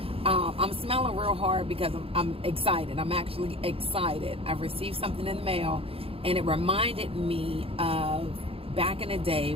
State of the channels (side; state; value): left; late; 0.27 ms